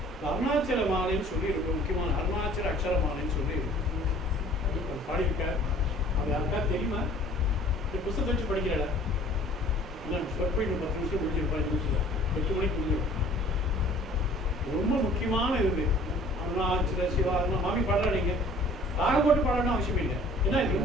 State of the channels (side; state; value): both; normal; correlation 0.51